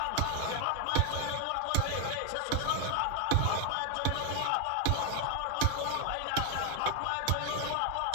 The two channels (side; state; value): both; different; correlation 0.00